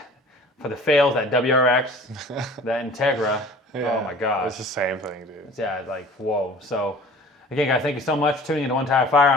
for the fails, that WRX, that Integra. Yeah, oh my gosh. It's the same thing, dude. Yeah, it's like, whoa. So, again, guys, thank you so much for tuning into One Tire Fire.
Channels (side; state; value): both; normal; correlation 0.47